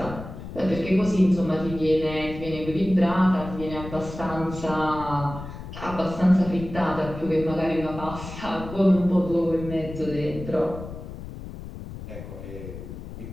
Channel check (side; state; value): left; noise; rumble, 11 dB below the sound